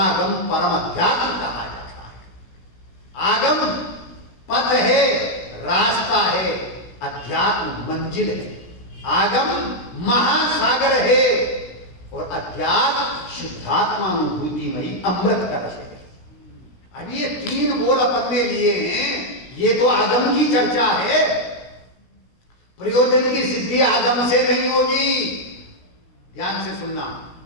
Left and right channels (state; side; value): late; right; 17 ms